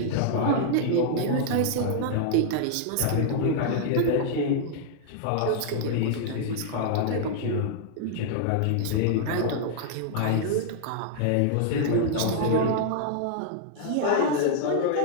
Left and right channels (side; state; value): both; different; correlation -0.01